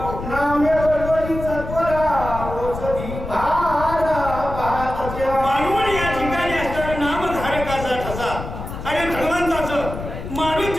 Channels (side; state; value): left; noise; rumble, 8 dB below the sound